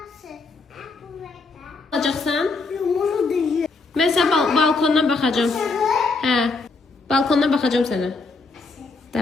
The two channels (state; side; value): quieter; right; 3.9 dB